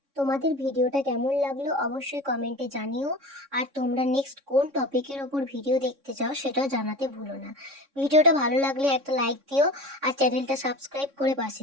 তোমাদের ভিডিওটা কেমন লাগলো অবশ্যই কমেন্টে জানিও। আর তোমরা নেক্সট কোন টপিকের ওপর ভিডিও দেখতে চাও সেটাও জানাতে ভুলো না। ভিডিওটা ভালো লাগলে একটা লাইক দিও আর চ্যানেলটা সাবস্ক্রাইব করে পাশে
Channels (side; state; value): left; late; 3.6 ms